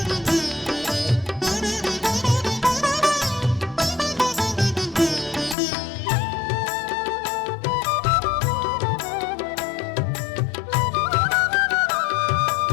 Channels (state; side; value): drops out; right; at 5.6 s